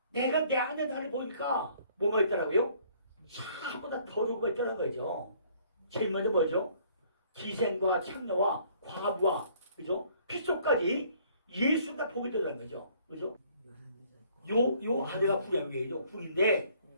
내가 내 안에 나를 보니까 뭐가 있더라고요? 전부 다 더러운 거 있다는 거죠. 제일 먼저 뭐죠? 기생과 창녀와 과부와, 그죠? 핏속까지 예수가 보게 되는 거죠. 그죠? 요 아내가 궁이죠. 궁인데,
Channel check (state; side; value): inverted; both; correlation -0.60